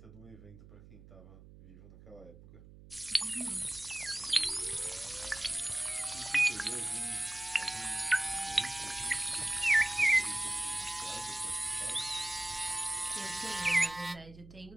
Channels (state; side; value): noise; right; hum, 19 dB below the sound